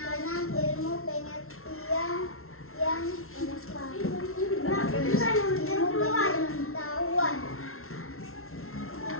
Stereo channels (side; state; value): right; late; 0.62 ms